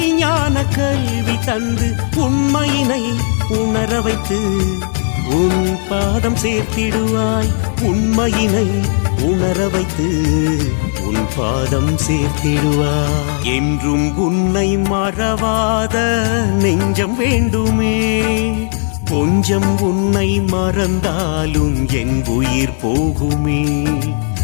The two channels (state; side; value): silent; right; 69 dB below the other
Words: கல்வி தந்து, உண்மையினை உணர வைத்து உன் பாதம் சேர்த்திடுவாய். உண்மையினை உணர வைத்து உன் பாதம் சேர்த்திடுவாய். என்றும் உன்னை மறவாத நெஞ்சம் வேண்டுமே. கொஞ்சம் உன்னை மறந்தாலும் என் உயிர் போகுமே.